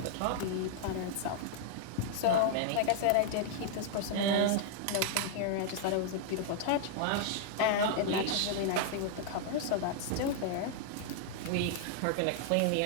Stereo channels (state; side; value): different; both; correlation -0.01